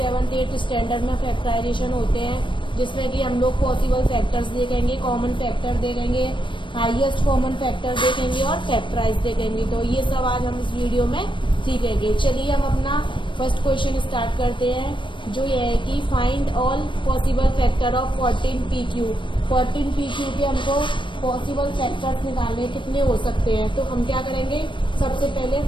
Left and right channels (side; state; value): right; late; 0.24 ms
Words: 8th standard में फैक्टराइजेशन होते हैं, जिसमें कि हम लोग पॉसिबल फैक्टर्स देखेंगे, कॉमन फैक्टर देखेंगे, हाईएस्ट कॉमन फैक्टर देखेंगे और फैक्टराइज देखेंगे। तो ये सब आज हम इस वीडियो में सीखेंगे। चलिए हम अपना फर्स्ट क्वेश्चन स्टार्ट करते हैं, जो ये है कि find all possible factor of 14pq। 14pq के हमको पॉसिबल फैक्टर्स निकालने कितने हो सकते हैं। तो हम क्या करेंगे, सबसे पहले